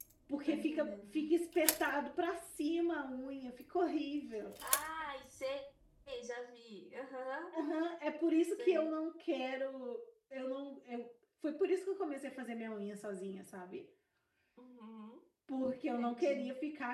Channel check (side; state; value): both; identical; correlation 1.00